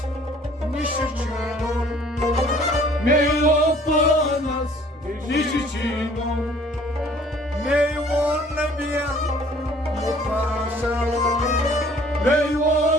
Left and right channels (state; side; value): normal; both; correlation 0.55